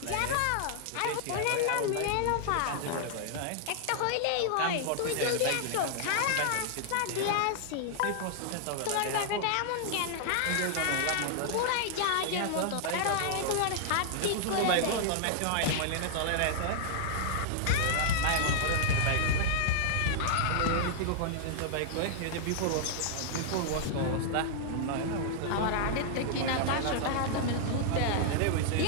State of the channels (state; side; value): different; both; correlation -0.01